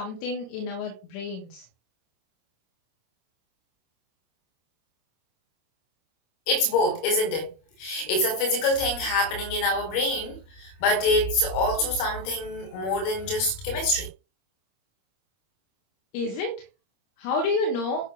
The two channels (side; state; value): right; late; 26 ms